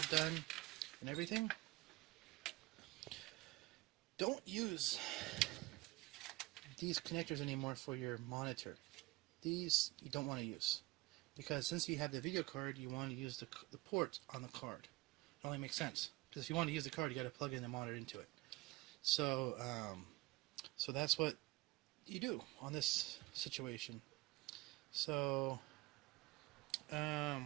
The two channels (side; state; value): left; quieter; 21.0 dB